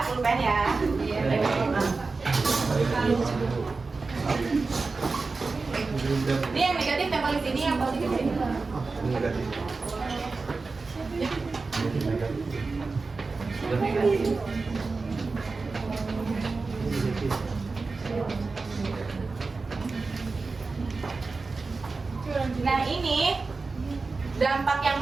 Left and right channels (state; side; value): quieter; left; 4.0 dB